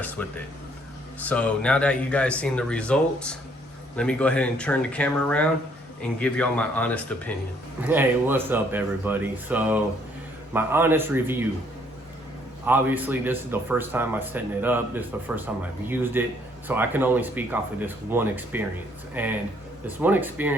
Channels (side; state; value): both; normal; correlation 0.65